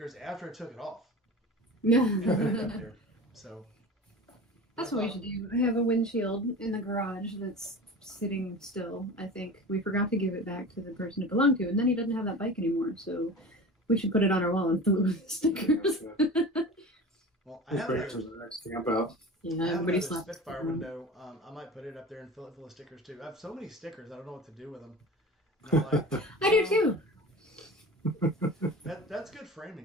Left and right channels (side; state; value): both; normal; correlation 0.34